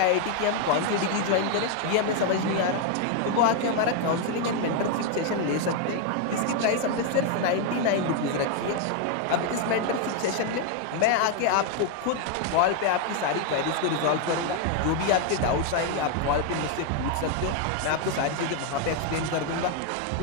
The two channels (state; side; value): different; both; correlation 0.01